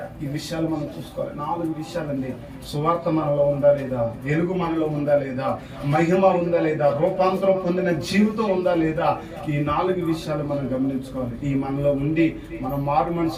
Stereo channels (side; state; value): both; identical; correlation 1.00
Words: ఈ విషయాలు మనం చూసుకోవాలి. 4 విషయాలండి. సువార్త మనలో ఉందా లేదా, వెలుగు మనలో ఉందా లేదా, మహిమ ఉందా లేదా, రూపాంతరం పొందిన జీవితం ఉందా లేదా, ఈ 4 విషయాలు మనం గమనించుకోవాలి. ఈ మనలో ఉండి మనం మారు